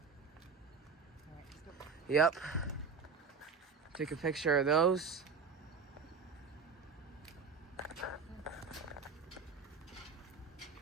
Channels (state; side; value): quieter; left; 5.3 dB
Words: Yep. Take a picture of those.